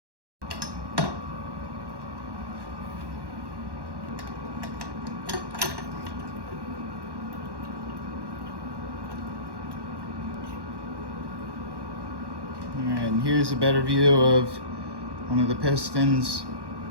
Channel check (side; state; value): left; late; 1.1 ms